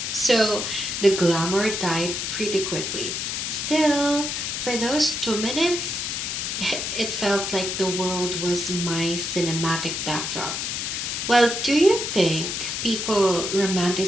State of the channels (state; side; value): noise; left; hiss, 3 dB below the sound